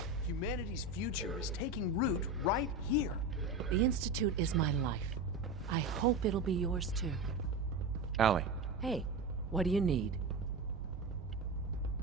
Humanity's future is taking root right here. The Institute is my life. I hope it'll be yours too. Allie. Hey, what do you need?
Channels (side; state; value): left; quieter; 3.2 dB